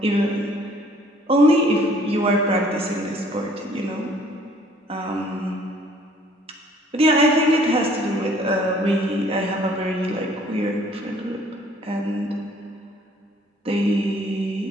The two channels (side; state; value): both; normal; correlation 0.58